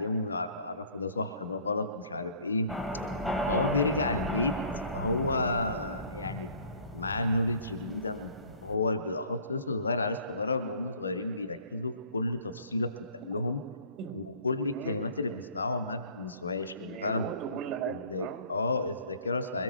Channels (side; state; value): both; inverted; correlation -0.51